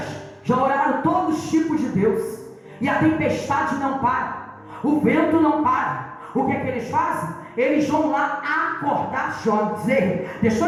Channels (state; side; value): identical; both; correlation 1.00